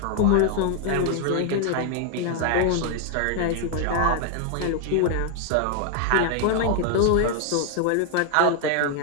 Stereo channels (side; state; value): both; different; correlation 0.00